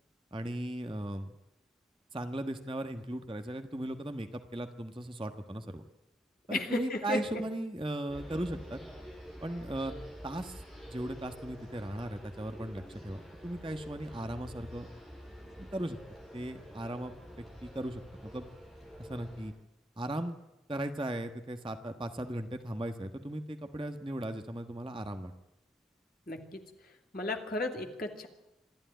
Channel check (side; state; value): both; normal; correlation 0.79